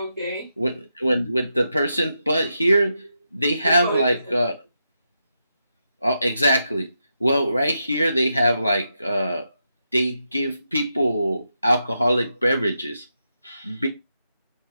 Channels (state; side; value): inverted; both; correlation -0.85